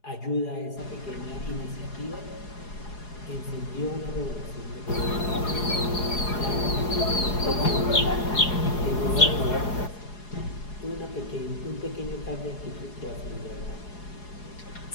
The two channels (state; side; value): late; right; 4.8 ms